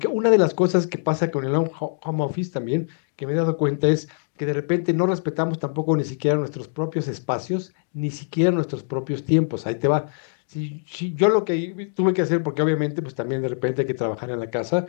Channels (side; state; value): right; silent; digital silence